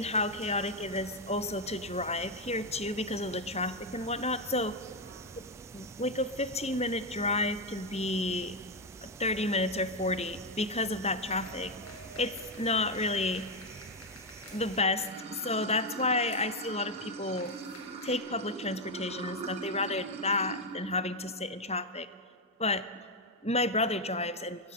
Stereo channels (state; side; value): normal; both; correlation 0.05